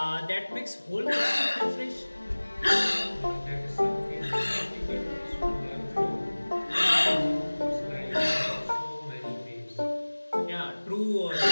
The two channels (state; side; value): inverted; both; correlation -1.00